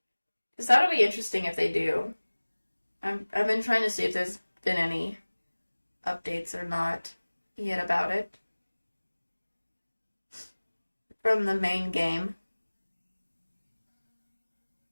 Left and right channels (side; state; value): both; inverted; correlation -1.00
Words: Because that'll be interesting if they do. I've been trying to see if there's been any updates or not yet about it from the main game.